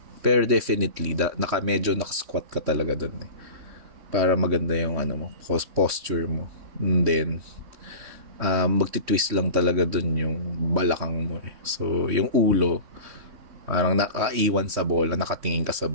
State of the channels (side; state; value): left; late; 3.1 ms